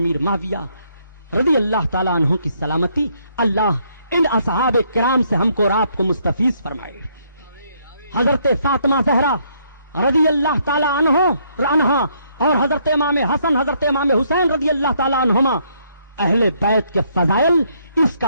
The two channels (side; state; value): both; inverted; correlation -0.70